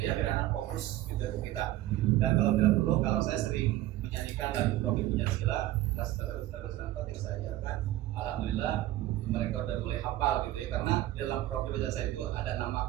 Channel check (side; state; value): left; quieter; 15.2 dB